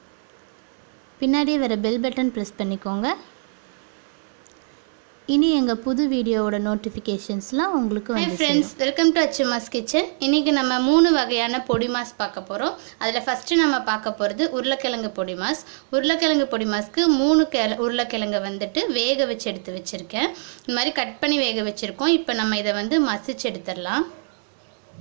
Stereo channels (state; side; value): silent; left; 63 dB below the other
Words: பின்னாடியே வர பெல் பட்டன் ப்ரெஸ் பண்ணிக்கோங்க. இனி எங்கள் புது வீடியோவோட நோட்டிஃபிகேஷன்ஸ்லாம் உங்களுக்கு வந்து friends, welcome to Achuma's kitchen. இன்றைக்கி நம்ம 3 வகையான பொடி மாஸ் பார்க்க போகிறோம். அதில் ஃபஸ்ட்டு நம்ம பார்க்க போகிறது உருளைக்கிழங்கு பொடி மாஸ். உருளைக்கிழங்கு பொடி மாஸ்க்கு 3 உருளைக்கிழங்கை வந்துட்டு வேக வச்சு எடுத்து வச்சுருக்கேன். இந்த மாதிரி கட் பண்ணி வேக வச்சுருக்கோம். இப்போ நம்ம இதை வந்து மசிச்சு எடுத்துடலாம்.